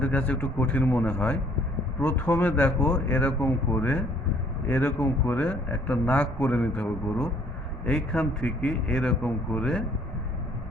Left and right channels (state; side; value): normal; both; correlation 0.61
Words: কাছে একটু কঠিন মনে হয়। প্রথমে দেখো এরকম করে একটা নাক করে নিতে হবে গরু। এইখান থেকে এরকম করে